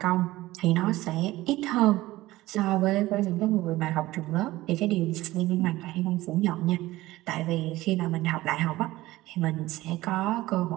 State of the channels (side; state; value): left; quieter; 17.5 dB